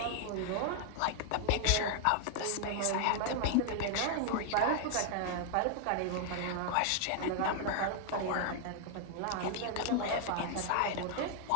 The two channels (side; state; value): both; different; correlation 0.00